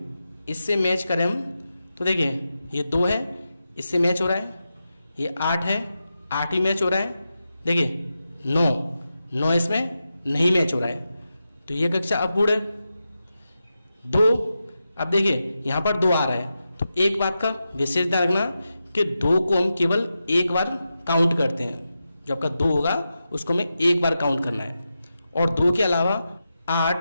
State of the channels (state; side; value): inverted; both; correlation -0.90